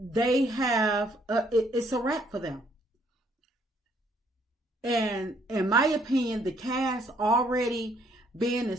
have it's a wrap for them. And in my opinion, the cast already being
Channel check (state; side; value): normal; both; correlation 0.66